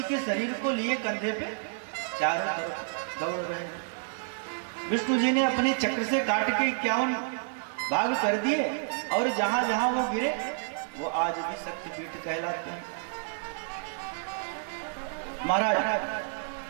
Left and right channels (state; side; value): silent; left; digital silence